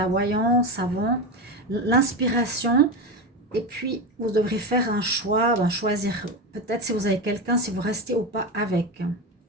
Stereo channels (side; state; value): both; normal; correlation 0.18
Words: voyance avant, l'inspiration, et puis vous devrez faire un choix, choisir peut-être si vous avez quelqu'un, si vous restez ou pas avec.